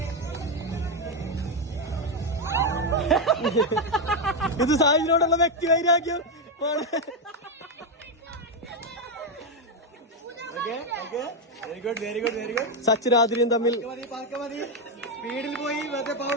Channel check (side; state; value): both; normal; correlation 0.05